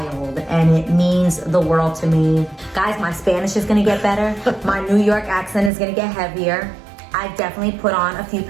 and it means the world to me. Guys, my Spanish is gonna get better. My New York accent is gonna get heavier. I've definitely put on a few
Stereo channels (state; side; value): drops out; left; at 5.7 s